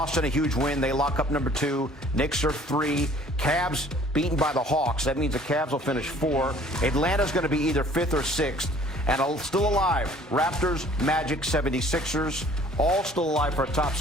a huge win. They lock up number 2. Knicks are 3. Cavs beaten by the Hawks. That means the Cavs will finish 4. Atlanta's going to be either 5th or 6th. And still alive, Raptors, Magic, 76ers, all still alive for a top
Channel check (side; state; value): both; normal; correlation 0.53